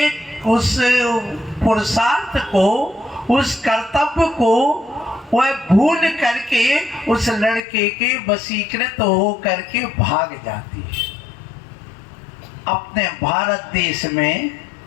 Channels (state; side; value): drops out; right; at 7.6 s